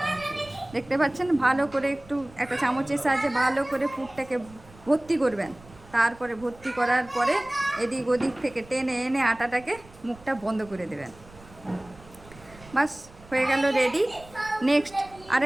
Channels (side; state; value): right; noise; rumble, 22 dB below the sound